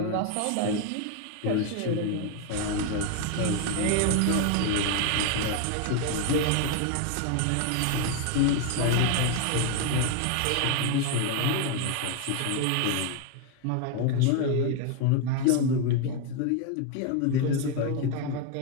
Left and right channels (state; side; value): different; both; correlation 0.01